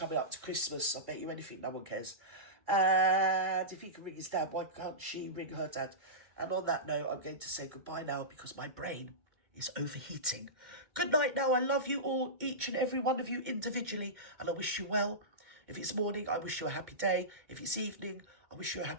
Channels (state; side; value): late; left; 2.1 ms